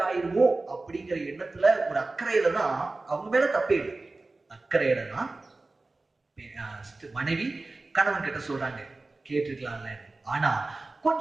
ஆயிருமோ அப்படிங்கிற எண்ணத்துல ஒரு அக்கறையில தான், அவங்க மேல தப்பே இல்லை, அக்கறையில தான் மனைவி கணவன் கிட்ட சொல்றாங்க கேட்டுக்கலாம்ல. ஆனா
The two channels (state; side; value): quieter; left; 3.3 dB